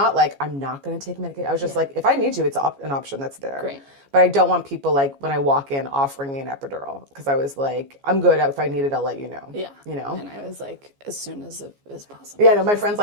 like, I'm not going to take medication. I was just like, if I need to, it's an option that's there. Great. But I don't want people like when I walk in offering me an epidural because I was like, I'm good. If I need it, I'll let you know. Yeah. You know? And I was like, as soon as possible. Yeah, no, my friend's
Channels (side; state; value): left; late; 14 ms